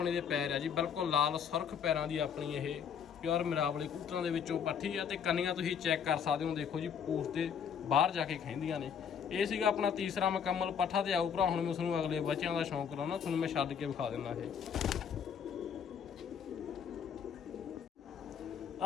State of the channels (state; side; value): quieter; right; 7.5 dB